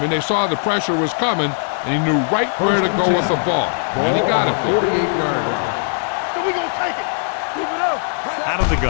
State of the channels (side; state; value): right; silent; digital silence